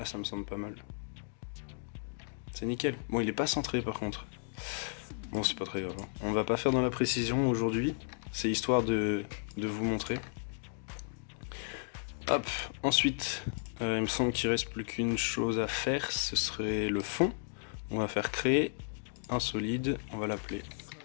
ça me semble pas mal. C'est nickel. Bon, il est pas centré par contre. Bon, c'est pas très grave. On va pas faire dans la précision aujourd'hui. C'est histoire de vous montrer. Hop, ensuite, il me semble qu'il reste plus qu'une chose à faire. Ce serait le fond. On va faire créer un solide. On va l'appeler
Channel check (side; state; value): right; silent; digital silence